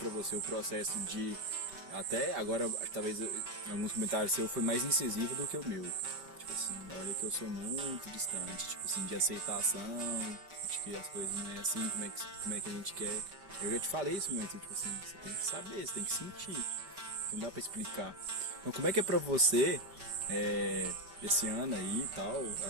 você o processo de, até agora, talvez em alguns comentários seu foi mais incisivo do que o meu, tipo assim, olha que eu sou muito distante, tipo assim, de aceitação, de que as coisas não é assim, como é que a gente quer. Eu já te falei isso muito, tipo assim, você tem que saber, você tem que sentir, não dá pra explicar. Então como é que é pra você, esse ano aí e tal,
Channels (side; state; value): left; late; 5.0 ms